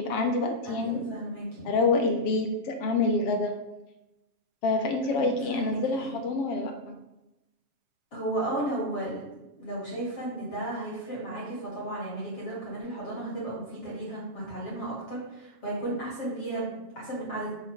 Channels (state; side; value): late; right; 7.4 ms